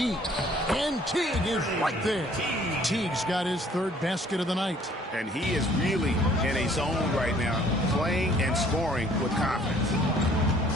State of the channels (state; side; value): normal; both; correlation 0.58